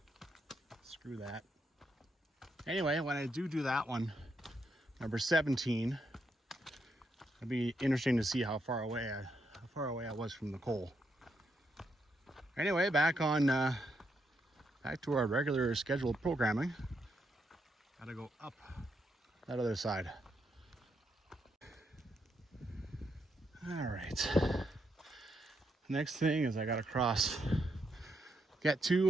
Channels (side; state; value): both; normal; correlation 0.79